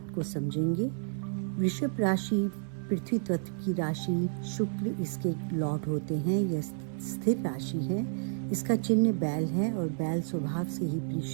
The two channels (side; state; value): left; silent; 57 dB below the other